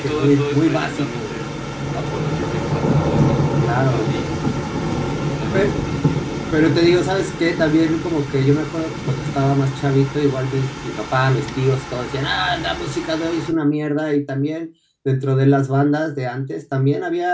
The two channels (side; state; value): both; identical; correlation 1.00